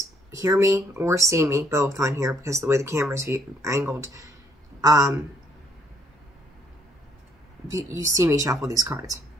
hear me or see me both on here because of the way the camera's angled. You see me shuffle these cards.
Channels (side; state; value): both; normal; correlation 0.67